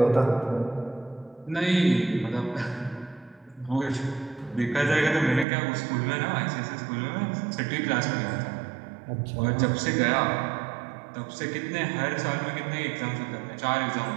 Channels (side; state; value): left; drops out; at 5.5 s